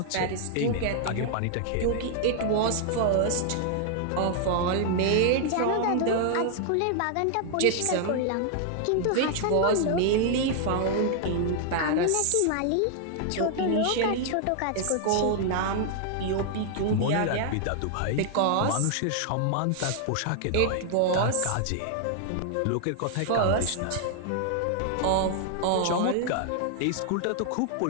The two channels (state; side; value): different; both; correlation 0.00